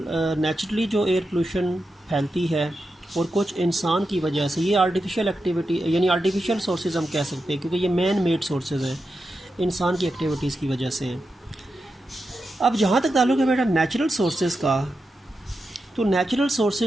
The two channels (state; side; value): normal; both; correlation 0.89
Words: जो एयर पोल्यूशन फैलती है, और कुछ इंसान की वजह से। ये आर्टिफिशियल एक्टिविटी यानी आर्टिफिशियल सोर्सेज हम कह सकते हैं, क्योंकि ये मैन मेड सोर्सेज हैं, इंसान की एक्टिविटीज़ की वजह से हैं। अब जहाँ तक ताल्लुक़ है बेटा नेचुरल सोर्सेज का, तो नेचुरल